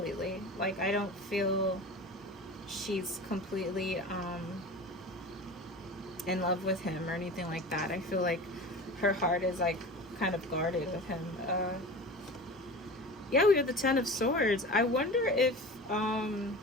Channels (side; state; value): both; normal; correlation 0.34